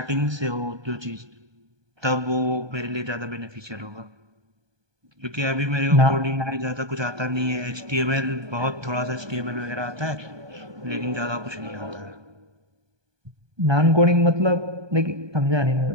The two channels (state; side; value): late; left; 1.2 ms